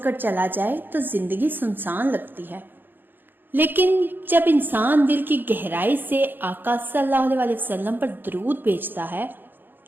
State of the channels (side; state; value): left; late; 0.095 ms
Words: चला जाए तो जिंदगी सुनसान लगती है। लेकिन जब इंसान दिल की गहराई से आका सल्लल्लाहु अलैहि वसल्लम पर दरूद भेजता है